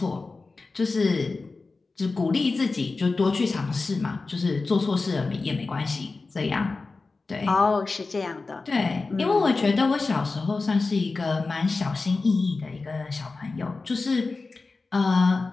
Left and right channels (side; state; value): right; quieter; 3.8 dB